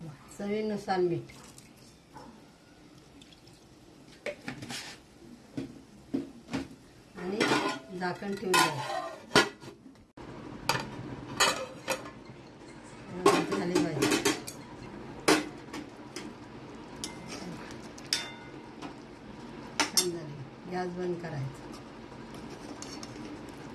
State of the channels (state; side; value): identical; both; correlation 1.00